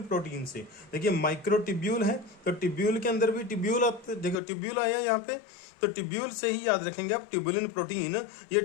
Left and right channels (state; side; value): drops out; right; at 4.4 s